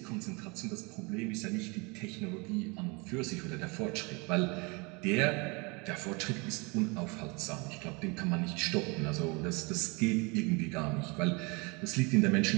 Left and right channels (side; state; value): left; quieter; 29.1 dB